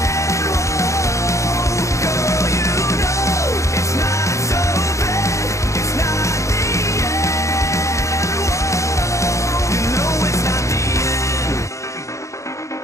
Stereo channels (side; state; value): right; late; 0.15 ms